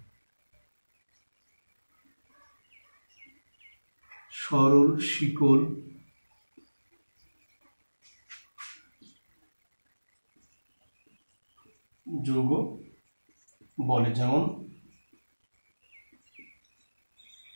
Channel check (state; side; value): inverted; both; correlation -1.00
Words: সরল শিকল যৌগ বলে। যেমন